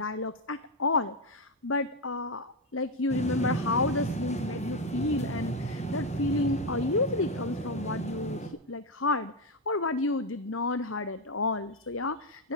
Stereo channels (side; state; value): both; normal; correlation 0.07